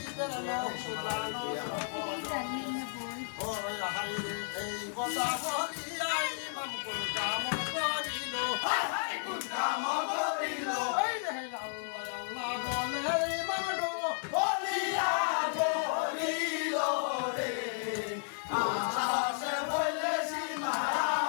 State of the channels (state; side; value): silent; right; digital silence